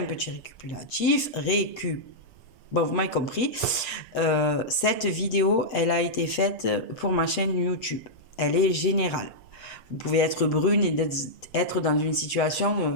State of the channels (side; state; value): right; late; 7.9 ms